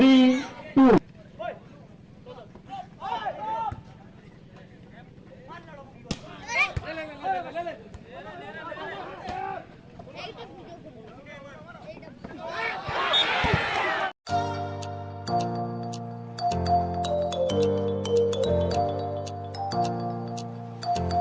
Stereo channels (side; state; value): both; identical; correlation 1.00